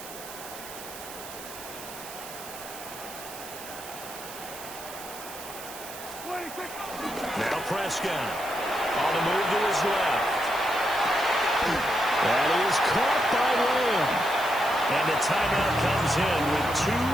Now Prescott on the move to his left. That is caught by Lamb. And the timeout comes in with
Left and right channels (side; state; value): right; noise; hiss, 13 dB below the sound